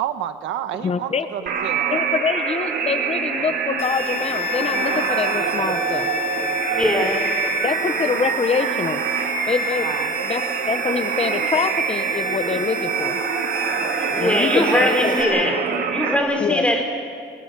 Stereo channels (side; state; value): both; normal; correlation 0.35